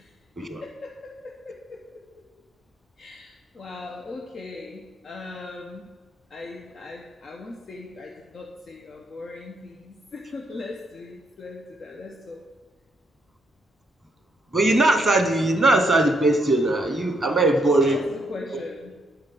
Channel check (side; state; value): both; normal; correlation 0.75